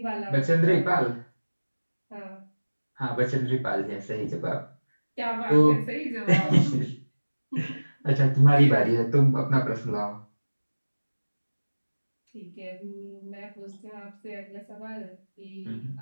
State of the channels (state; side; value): inverted; both; correlation -1.00